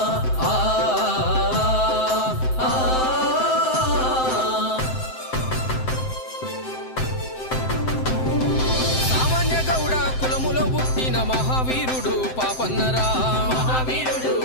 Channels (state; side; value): late; right; 7.7 ms